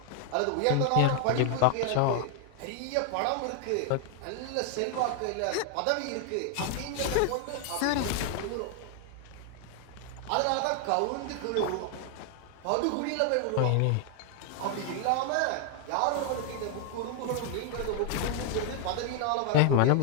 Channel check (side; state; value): both; different; correlation 0.00